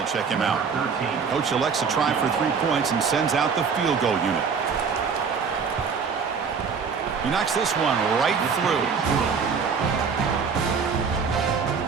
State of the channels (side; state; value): left; quieter; 5.8 dB